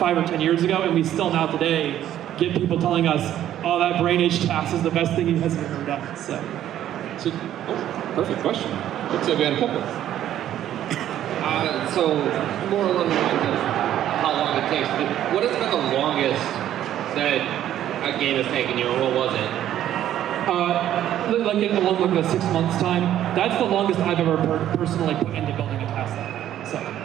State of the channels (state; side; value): quieter; left; 11.7 dB